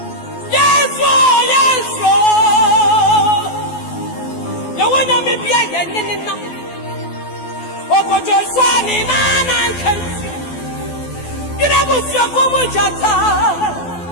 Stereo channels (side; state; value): right; late; 12 ms